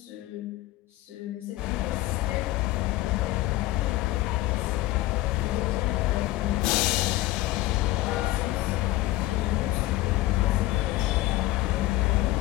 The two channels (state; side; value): quieter; right; 17.2 dB